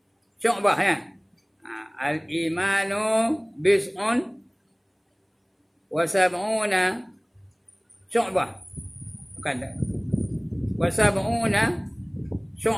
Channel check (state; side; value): identical; both; correlation 1.00